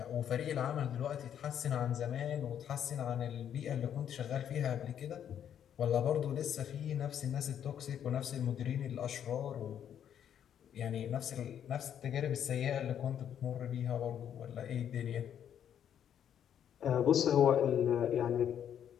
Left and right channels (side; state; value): right; quieter; 9.4 dB